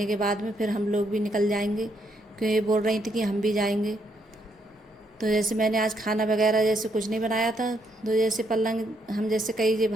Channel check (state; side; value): normal; both; correlation 0.75